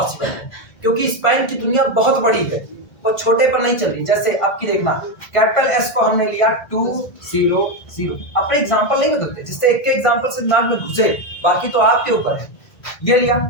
है, क्योंकि स्पैन की दुनिया बहुत बड़ी है, वो छोटे पर नहीं चल रही। जैसे अब की देखना, कैपिटल S को हमने लिया 2 0 0, अपने एग्जांपल नहीं बदलते, जिससे एक के एग्जांपल से दिमाग में घुसे, बाकी तो आपके ऊपर है। ये लिया,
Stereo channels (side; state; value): right; late; 1.7 ms